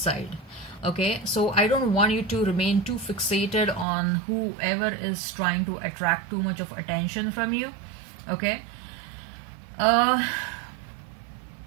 Okay, so I don't want you to remain too fixated on whoever is trying to attract too much of attention from you. Okay, I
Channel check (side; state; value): left; drops out; at 3.9 s